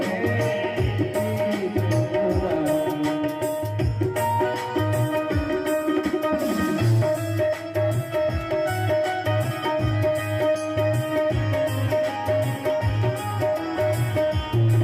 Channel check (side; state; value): both; identical; correlation 1.00